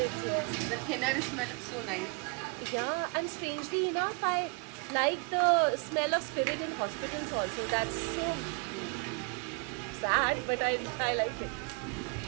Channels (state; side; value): quieter; left; 34.3 dB